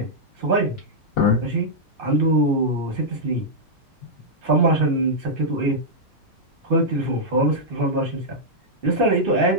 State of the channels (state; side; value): normal; both; correlation -0.08